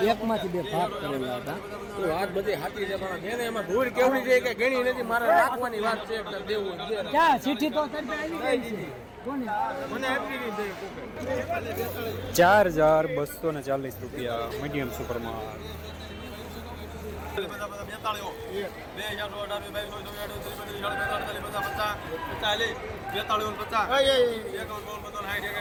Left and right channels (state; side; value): identical; both; correlation 1.00